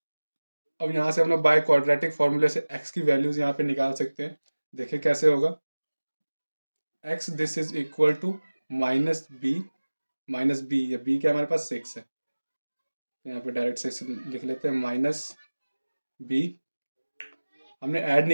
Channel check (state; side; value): inverted; both; correlation -1.00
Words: अब यहाँ से हम लोग बाय क्वाड्रेटिक फॉर्मूले से x की वैल्यूज यहाँ पे निकाल सकते हैं। देखिए कैसे होगा, x this is equal to minus b, minus b, या बी क्या हमारे पास सिक्स है, यहाँ पे डायरेक्ट सिक्स लिख लेते हैं, माइनस बी, हमने ऐड